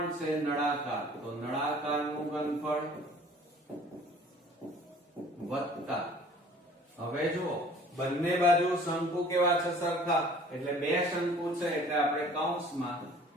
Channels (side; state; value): both; normal; correlation 0.51